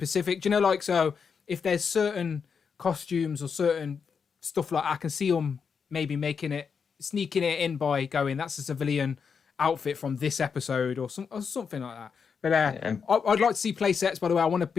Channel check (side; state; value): right; quieter; 6.1 dB